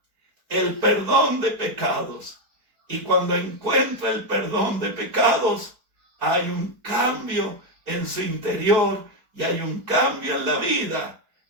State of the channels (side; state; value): left; late; 4.5 ms